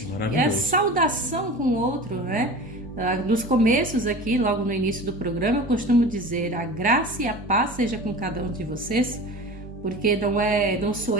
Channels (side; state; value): both; normal; correlation 0.35